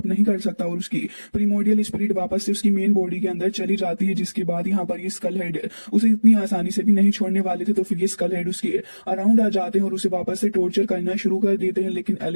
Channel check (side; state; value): both; inverted; correlation -1.00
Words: नहीं कर सकता और उसकी प्रीमोर्डियल स्पिरिट वापस से उसकी मेन बॉडी के अंदर चली जाती है, जिसके बाद यहाँ पर ये स्कल हेड उसे इतनी आसानी से भी नहीं छोड़ने वाले थे। तो फिर ये स्कल हेड उसके अराउंड आ जाते हैं और उसे वापस से टॉर्चर करना शुरू कर देते हैं, लेकिन